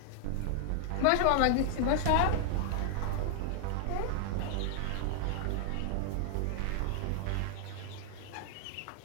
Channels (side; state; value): both; different; correlation 0.00